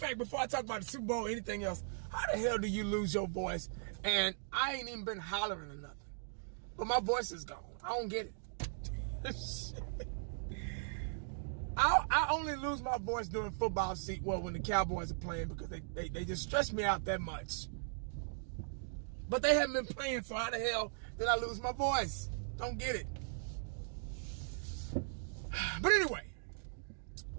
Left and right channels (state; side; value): silent; left; digital silence